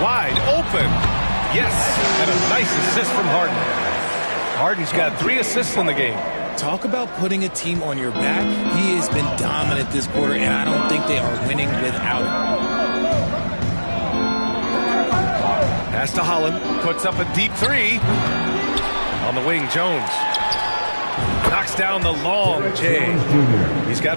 Wide open. Yes. And a nice assist from Harden. Harden's got 3 assists in the game. Talk about putting a team on your back. He has been dominant this quarter, and I don't think they are winning without him. Pass to Holland. Puts up a deep 3. On the wing, Jones. Knocks down the long J. He's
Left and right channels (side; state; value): both; inverted; correlation -1.00